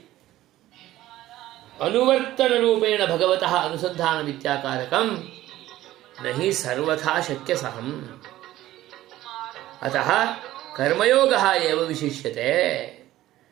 अनुवर्तन रूपेण भगवतः अनुसंधान विद्याकारकम नहीं सर्वथा शक्य सहम। अतः कर्मयोगः एव विशिष्यते।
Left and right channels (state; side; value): quieter; left; 15.0 dB